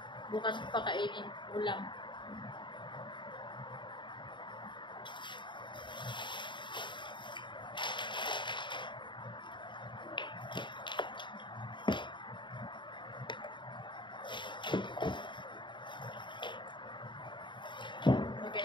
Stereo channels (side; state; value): right; late; 0.23 ms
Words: Bukas ko pakainin ulam. Lagyan